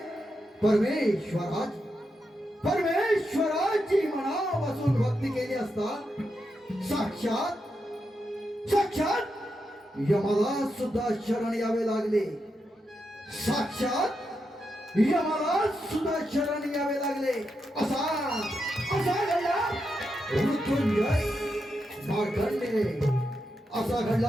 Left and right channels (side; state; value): both; normal; correlation 0.85